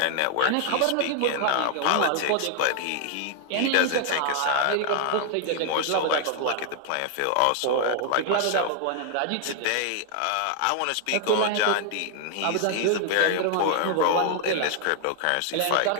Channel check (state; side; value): different; both; correlation 0.00